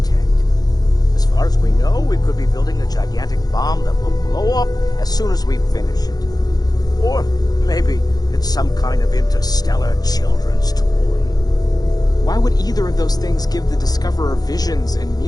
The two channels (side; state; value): right; late; 0.19 ms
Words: detect. As far as we know, we could be building a gigantic bomb that will blow up as soon as we finish it. Or maybe it's some kind of interstellar children's toy. Why would either of those things give the Discoverer visions and